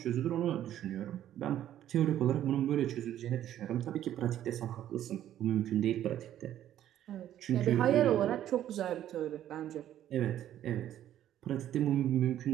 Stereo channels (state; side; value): quieter; left; 11.7 dB